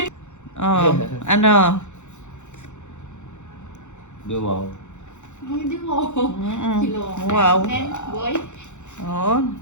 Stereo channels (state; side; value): late; right; 0.84 ms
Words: Oh, ano? Wow. Hindi mo. Kilo. Wow. Boy. Oh,